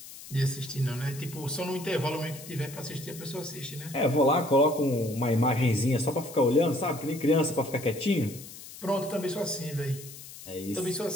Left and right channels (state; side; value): noise; left; hiss, 15 dB below the sound